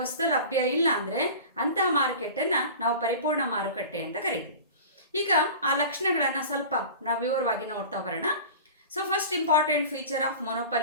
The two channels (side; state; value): both; inverted; correlation -0.37